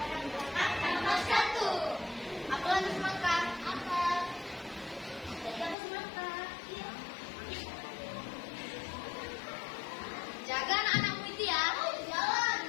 bahak tangkap satu. Apa lagi maka? Apa? Tidak maka. Jaga anak-anakmu itu ya.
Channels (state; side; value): drops out; right; at 5.8 s